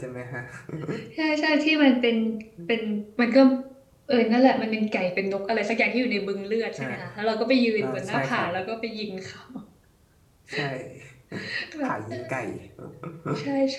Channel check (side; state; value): both; identical; correlation 1.00